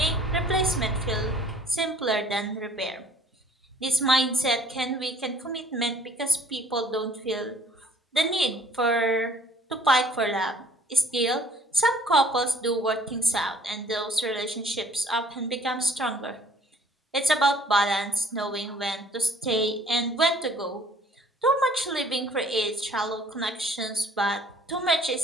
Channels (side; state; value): both; normal; correlation 0.56